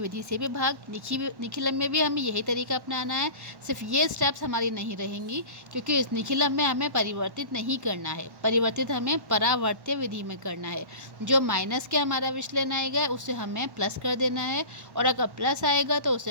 से भी भाग। निखिलम में भी हमें यही तरीका अपनाना है, सिर्फ ये स्टेप्स हमारी नहीं रहेंगी क्योंकि इस निखिलम में हमें परिवर्तित नहीं करना है, परिवर्तित हमें परावर्त्य विधि में करना है। जो माइनस के हमारा विचलन आएगा उसे हमें प्लस कर देना है और अगर प्लस आएगा तो उसे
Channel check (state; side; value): late; left; 1.1 ms